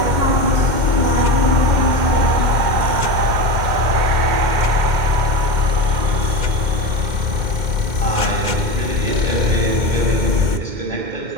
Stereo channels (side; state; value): left; late; 2.1 ms